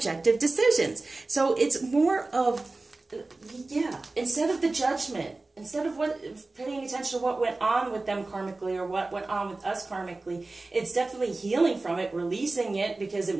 decisions. So it's more of, yeah, instead of the judgment, instead of paying attention to what went on with them karmically or what went on with us karmically, it's definitely healing from it, releasing it, because it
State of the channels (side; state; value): left; quieter; 3.3 dB